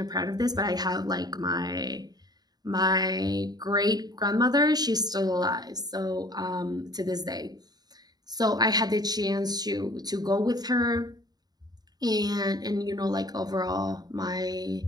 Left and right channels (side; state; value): left; late; 0.19 ms